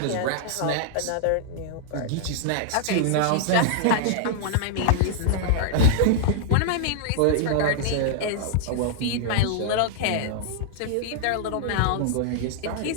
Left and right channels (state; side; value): different; both; correlation -0.01